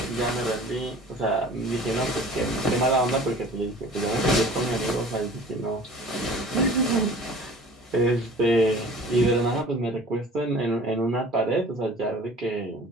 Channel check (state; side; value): normal; both; correlation 0.45